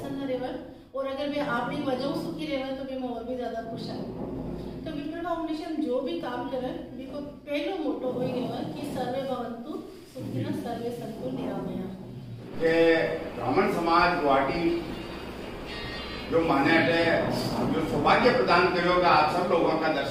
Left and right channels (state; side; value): identical; both; correlation 1.00